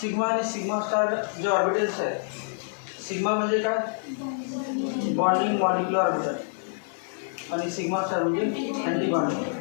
सिग्मा आणि सिग्मा स्टार जे ऑर्बिटल्स आहेत, सिग्मा म्हणजे काय, बॉन्डिंग मॉलिक्युलर ऑर्बिटल आणि सिग्मा स्टार म्हणजे अँटी बॉन्डिंग.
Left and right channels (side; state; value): right; silent; digital silence